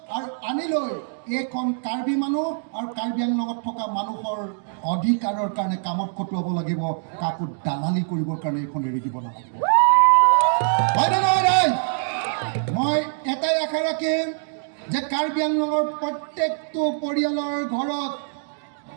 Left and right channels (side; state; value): left; silent; digital silence